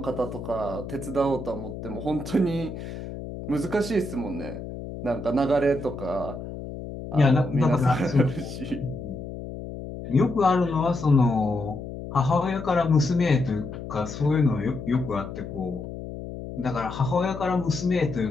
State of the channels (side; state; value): left; noise; hum, 9 dB below the sound